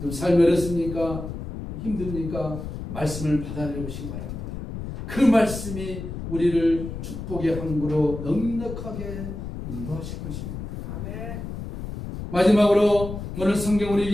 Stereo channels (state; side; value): noise; left; rumble, 8 dB below the sound